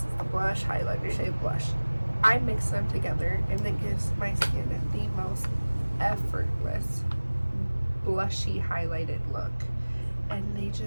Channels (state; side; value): inverted; both; correlation -1.00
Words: the blush, highlighter shade, blush. I mix them together and it gives my skin the most effortless blushy highlighted look, and they